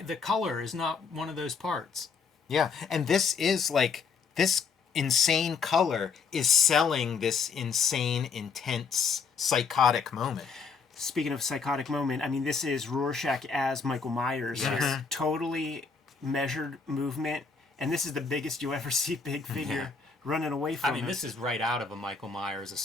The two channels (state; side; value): quieter; right; 5.3 dB